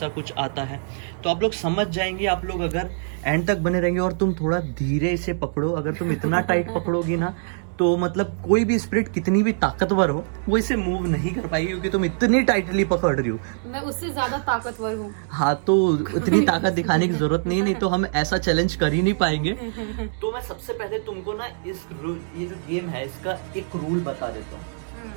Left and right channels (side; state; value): left; silent; digital silence